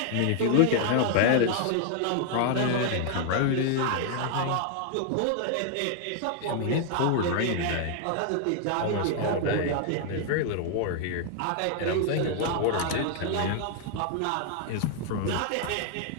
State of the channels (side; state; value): both; different; correlation 0.00